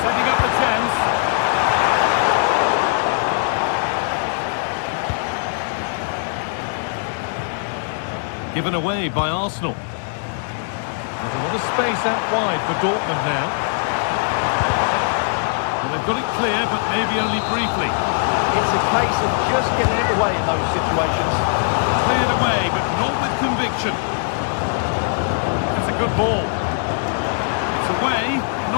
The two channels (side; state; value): right; silent; digital silence